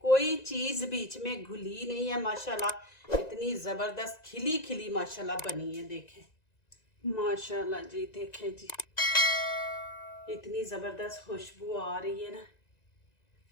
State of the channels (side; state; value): right; late; 1.9 ms